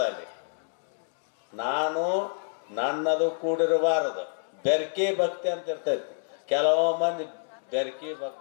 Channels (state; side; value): silent; right; 60 dB below the other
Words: ಅಲ್ಲಿ ನನ್ನದು ಕೂಡಿರಬಾರದು. ಬೆರ್ಕೆ ಭಕ್ತಿ ಅಂತ ಇರ್ತೈತಿ. ಕೆಲವು ಮಂದಿ ಬೆರಕಿ